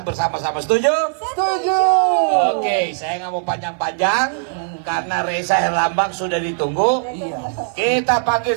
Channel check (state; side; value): silent; left; 58 dB below the other